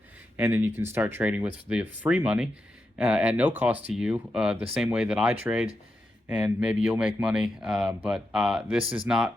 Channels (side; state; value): both; normal; correlation 0.87